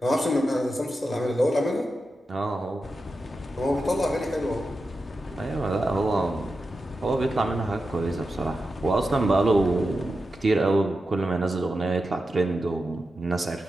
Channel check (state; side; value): normal; both; correlation 0.90